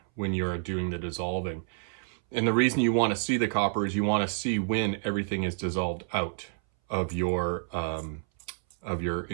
when you're doing the dissolving. And the reason you want to see the copper is you want to see when everything is dissolved out of your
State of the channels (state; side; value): silent; left; 59 dB below the other